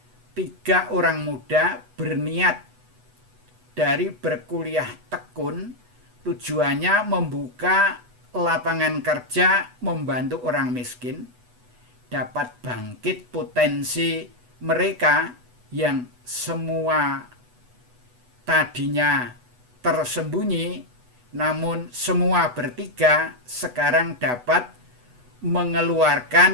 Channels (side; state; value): left; late; 8.1 ms